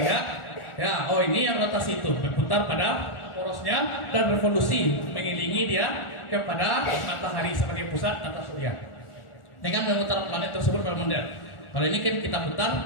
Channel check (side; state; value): right; late; 1.4 ms